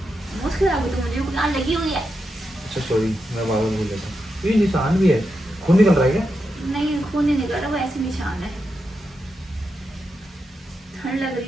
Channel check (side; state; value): both; normal; correlation 0.86